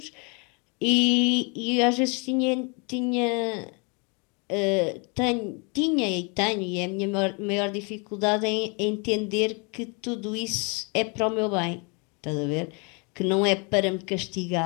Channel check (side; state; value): right; quieter; 33.1 dB